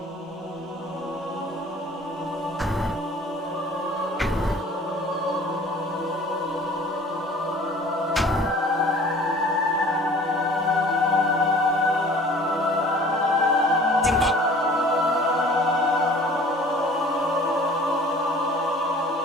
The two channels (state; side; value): normal; both; correlation 0.48